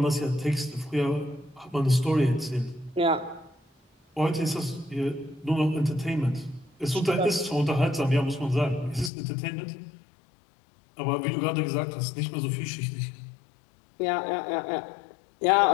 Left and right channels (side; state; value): right; drops out; at 9.1 s